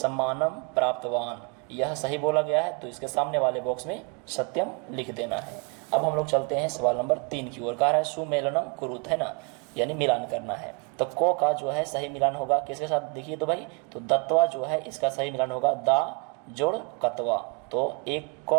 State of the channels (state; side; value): quieter; left; 36.0 dB